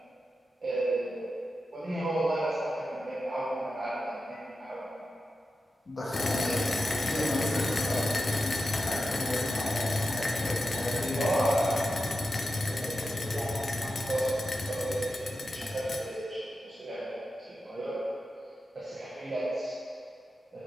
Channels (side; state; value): both; normal; correlation 0.91